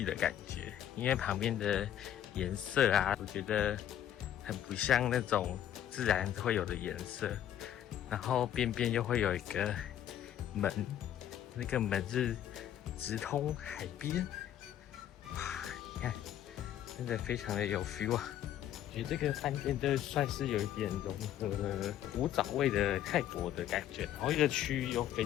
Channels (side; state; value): right; quieter; 11.1 dB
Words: 的感觉，因为旁边的颜色啊，我觉得很不像那种自然会有的颜色。然后边边又会有一个门，那个门是直通海边。哇，你看，真的非常的有 feel 啊！我觉得这个饭店就算是有一点融合了古早味的泰国的感觉，然后一个区域又非